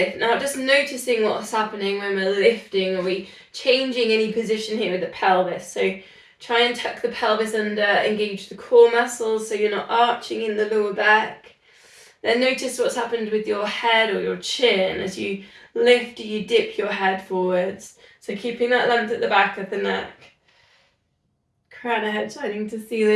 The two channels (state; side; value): identical; both; correlation 1.00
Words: Now just noticing what's happening when we're lifting. Are we changing any position here with the pelvis? So try and tuck the pelvis under, engage the core muscles so you're not arching in the lower back. Then notice what's happened with your head or your chin as you lift or you dip your head forwards. So keeping that length at the back of the neck. Crown of head shining to